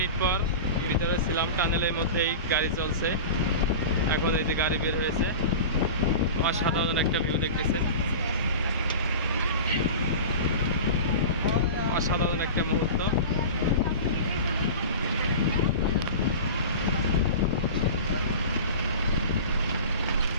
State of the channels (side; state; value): both; inverted; correlation -0.32